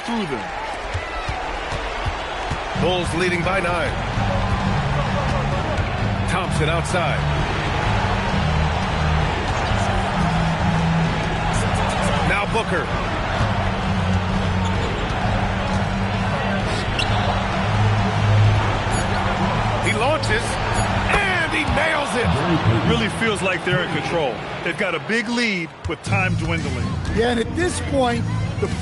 through them. Bulls leading by 9. Thompson outside. Now Booker. He launches. He nails it. It really feels like they're in control. They've got a big lead with time dwindling. Yeah, and at this point, the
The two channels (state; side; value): identical; both; correlation 1.00